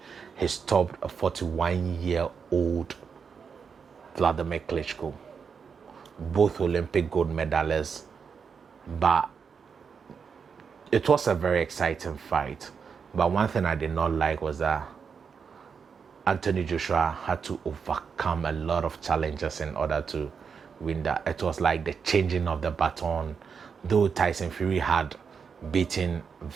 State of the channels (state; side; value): quieter; left; 6.1 dB